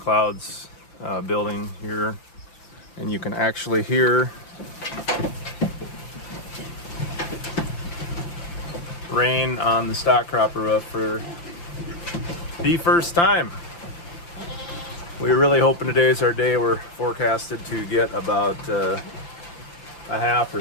building here, and you can actually hear rain on the stock cropper roof for the first time. We're really hoping today's our day. We're forecasted to get about a half or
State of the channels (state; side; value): late; right; 5.9 ms